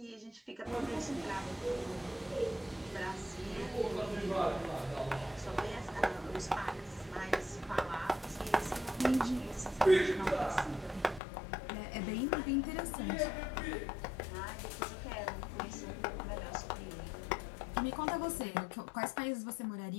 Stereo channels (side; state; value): right; drops out; at 11.2 s